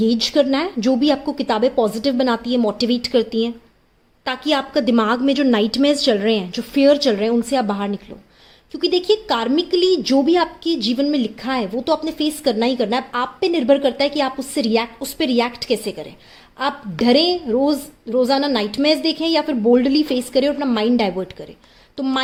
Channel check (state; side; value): identical; both; correlation 1.00